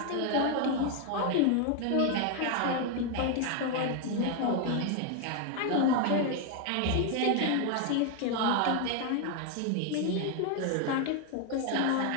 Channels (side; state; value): both; different; correlation 0.01